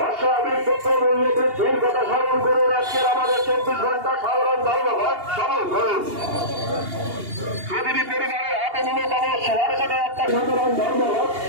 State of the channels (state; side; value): late; left; 2.8 ms